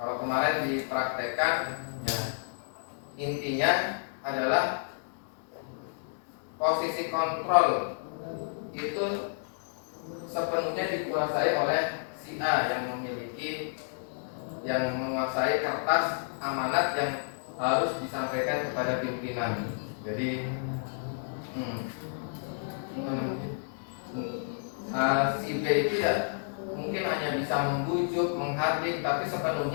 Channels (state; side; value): silent; right; digital silence